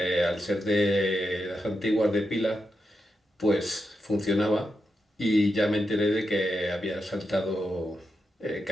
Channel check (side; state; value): both; normal; correlation 0.86